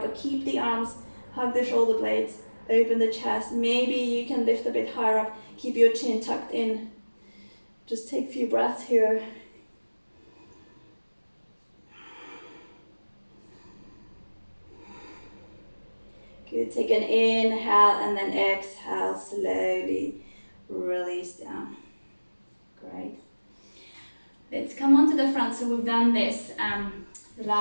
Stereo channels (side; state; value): both; inverted; correlation -1.00